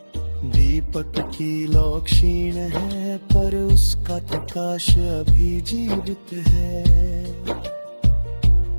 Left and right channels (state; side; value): inverted; both; correlation -1.00